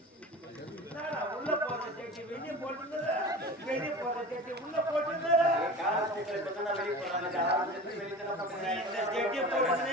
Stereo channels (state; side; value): normal; both; correlation 0.35